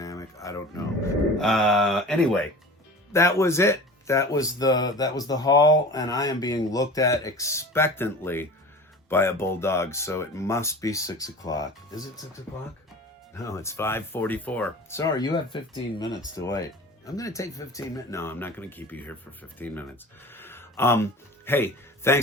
I don't know. Anyway, that was it. That was the haul, and I am being looked at expectantly by a bulldog, so it must be 6 o'clock. Is it 6 o'clock? No, it's 5:44. Sorry, you have 15 minutes to wait. I'm going to take 15 minutes. No, I'm not going to keep you here for 15 minutes. Hey,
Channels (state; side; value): normal; both; correlation 0.38